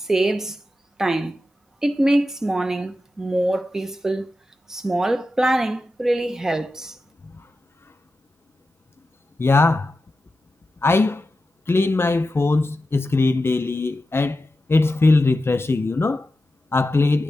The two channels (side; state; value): both; normal; correlation 0.91